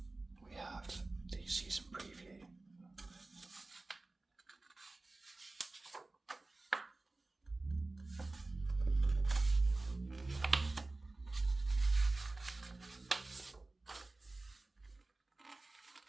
we have the season preview.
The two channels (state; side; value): quieter; left; 3.1 dB